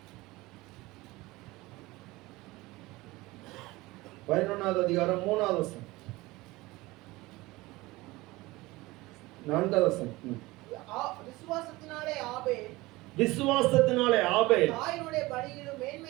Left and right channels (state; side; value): quieter; left; 20.6 dB